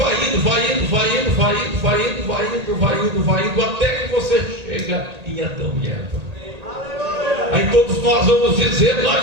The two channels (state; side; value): late; left; 1.8 ms